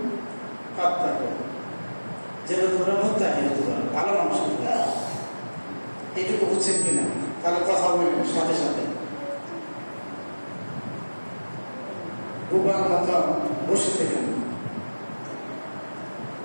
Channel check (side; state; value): both; inverted; correlation -1.00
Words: পাত্তা করি যেন তোমরা মুত্তাকি হতে পারো, ভালো মানুষ হতে পারো। এইটুকু বুঝছেন কিনা? তাহলে কথা বলবেন সাথে সাথে। বুবার মতো বসে থেকেন।